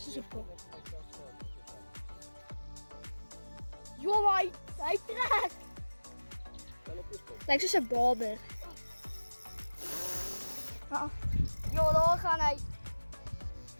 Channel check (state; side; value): inverted; both; correlation -1.00